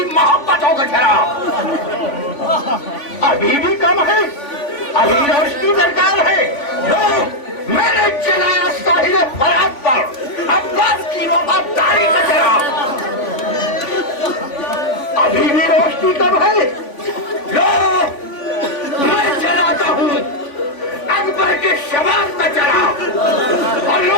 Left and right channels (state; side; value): late; right; 3.5 ms